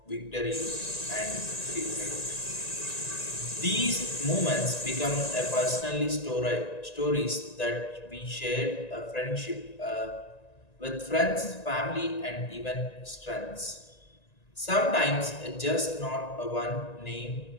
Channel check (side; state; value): right; late; 1.9 ms